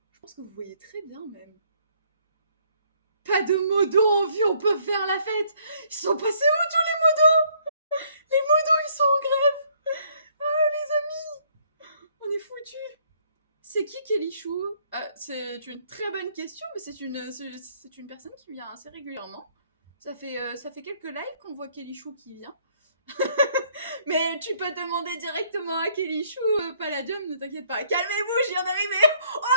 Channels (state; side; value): inverted; both; correlation -0.65